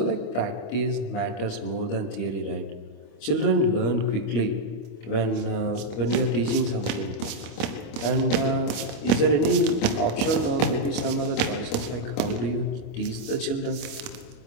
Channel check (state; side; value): late; right; 25 ms